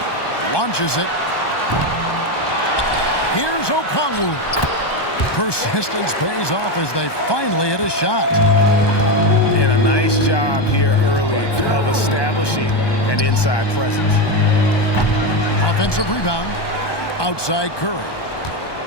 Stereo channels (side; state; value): right; late; 1.2 ms